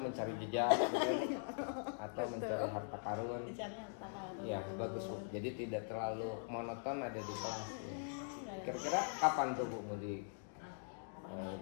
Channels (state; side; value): silent; right; digital silence